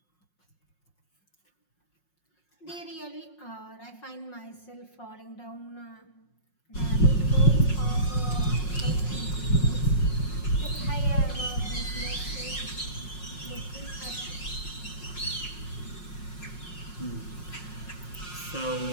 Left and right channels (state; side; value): late; right; 5.5 ms